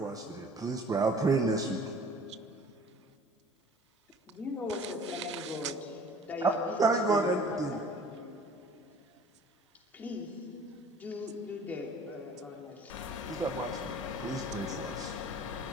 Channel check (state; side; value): normal; both; correlation 0.49